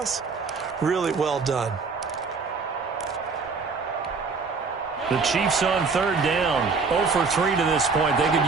Really well done. The Chiefs on third down. 0 for 3 to this point. They could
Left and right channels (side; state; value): left; quieter; 4.7 dB